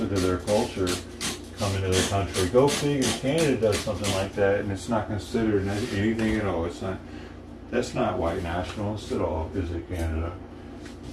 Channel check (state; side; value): identical; both; correlation 1.00